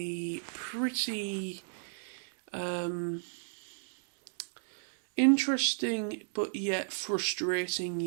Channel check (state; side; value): silent; left; digital silence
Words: pretty interesting but yet frustrating